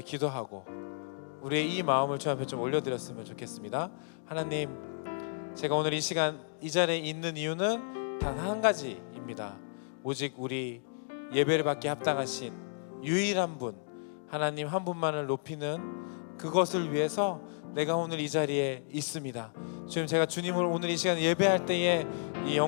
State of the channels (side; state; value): right; silent; digital silence